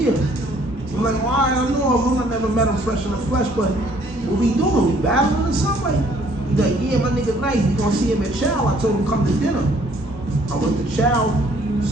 I'm like, well, I don't know him. I never met him fresh in the flesh, but what we doing? We battling or something? He's like, yeah, my nigga nice. We gonna see him at Chow. I told him come to dinner. I went to Chow,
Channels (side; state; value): both; normal; correlation 0.61